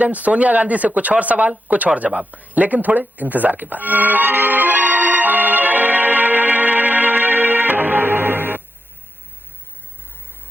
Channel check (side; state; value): both; normal; correlation 0.85